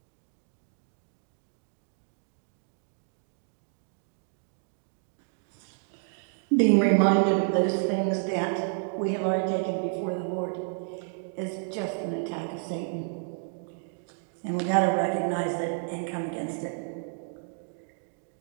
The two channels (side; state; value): left; silent; 58 dB below the other